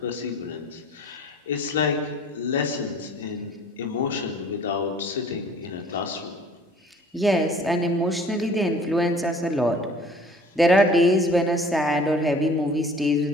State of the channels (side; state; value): both; normal; correlation 0.50